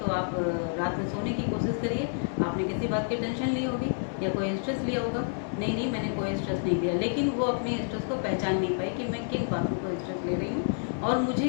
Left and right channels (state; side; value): silent; right; digital silence